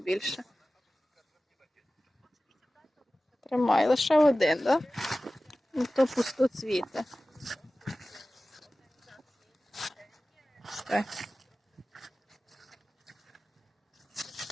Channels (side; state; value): both; normal; correlation 0.97